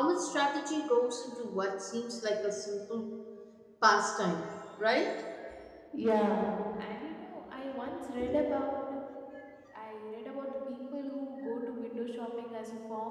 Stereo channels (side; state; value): both; identical; correlation 1.00